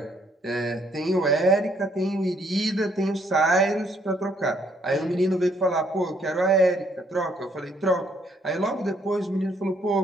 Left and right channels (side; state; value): both; normal; correlation 0.68